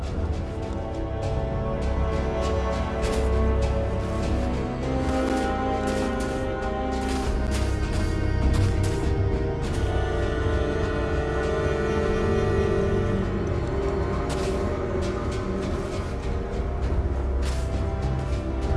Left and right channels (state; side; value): identical; both; correlation 1.00